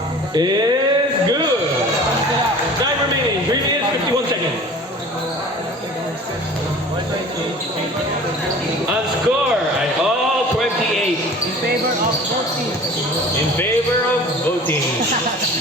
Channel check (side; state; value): both; normal; correlation 0.43